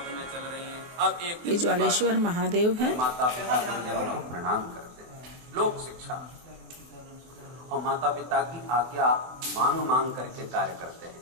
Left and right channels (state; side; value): late; left; 24 ms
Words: में चल रही है। अब एक ये ज्वालेश्वर महादेव है। माता पिता गुरुजनों को प्रणाम करते हैं, लोक शिक्षा और माता पिता की आज्ञा मांग मांग करके कार्य करते हैं।